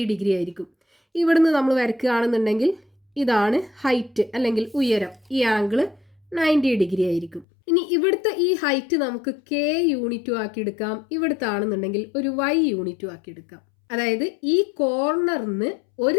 ഡിഗ്രി ആയിരിക്കും. ഇവിടുന്ന് നമ്മൾ വരയ്ക്കുകയാണെന്നുണ്ടെങ്കിൽ ഇതാണ് ഹൈറ്റ് അല്ലെങ്കിൽ ഉയരം. ഈ ആംഗിൾ 90 ഡിഗ്രി ആയിരിക്കും. ഇനി ഇവിടുത്തെ ഈ ഹൈറ്റ് നമുക്ക് k യൂണിറ്റും ആക്കി എടുക്കാം. ഇവിടുത്തെ ആണെന്നുണ്ടെങ്കിൽ ഒരു y യൂണിറ്റും ആക്കി എടുക്കാം. അതായത് ഈ കോർണറിന്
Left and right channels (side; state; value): right; drops out; at 7.5 s